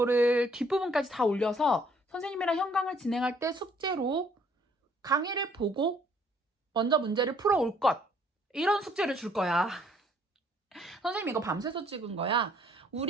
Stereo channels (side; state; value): both; normal; correlation 0.63